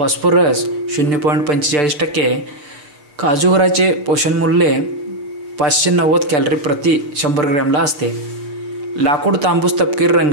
0.45%. काजूगराचे पोषणमूल्य 590 कॅलरी प्रति 100 ग्रॅमला असते. लाकूड तांबूस तपकिरी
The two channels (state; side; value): late; left; 6.8 ms